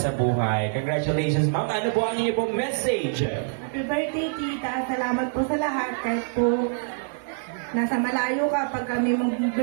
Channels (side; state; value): left; silent; digital silence